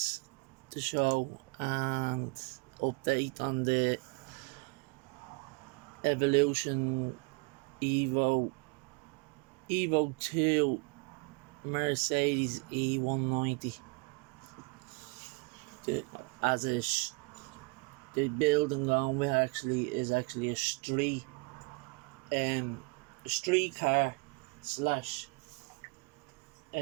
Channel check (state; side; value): quieter; left; 30.5 dB